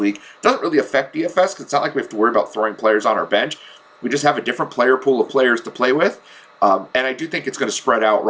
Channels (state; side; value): identical; both; correlation 1.00